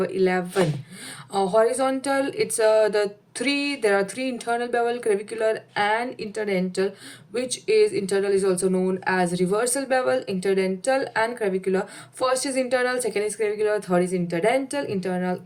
11, horizontal, it's there are three internal bevel, clavicular and interdental, which is internal is also known as reversal bevel, interdental and clavicular. First is internal, second is clavicular, third is interdental. Internal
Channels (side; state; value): both; identical; correlation 1.00